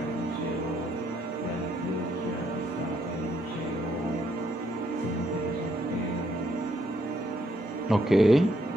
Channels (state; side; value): normal; both; correlation 0.72